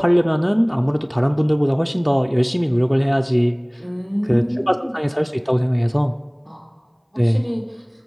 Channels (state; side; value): identical; both; correlation 1.00